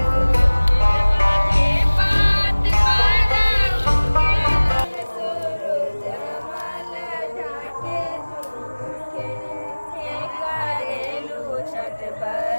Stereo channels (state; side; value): inverted; both; correlation -1.00